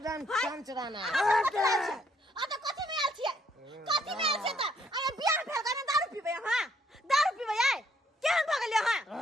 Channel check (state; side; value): normal; both; correlation 0.69